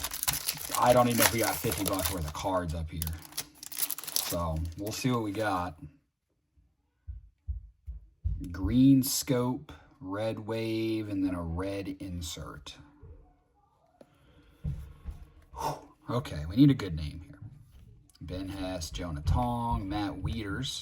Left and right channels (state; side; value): identical; both; correlation 1.00